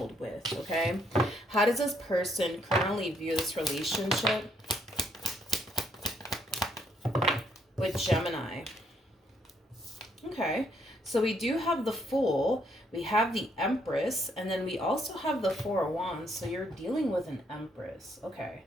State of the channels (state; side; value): normal; both; correlation 0.71